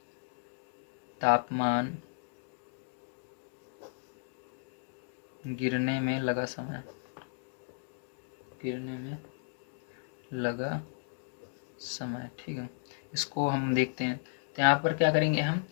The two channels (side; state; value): right; silent; digital silence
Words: तापमान गिरने में लगा समय, ठीक है। इसको हम देखते हैं। तो यहाँ पर क्या करेंगे हम,